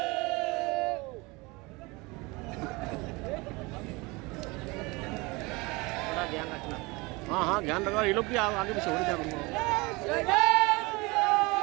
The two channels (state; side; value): quieter; left; 24.9 dB